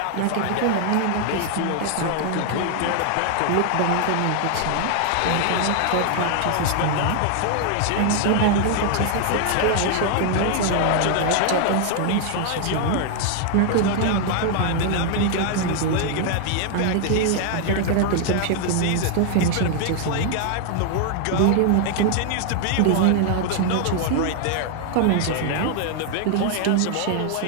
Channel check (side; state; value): both; different; correlation 0.00